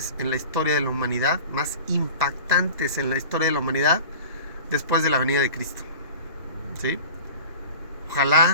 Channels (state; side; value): inverted; both; correlation -0.39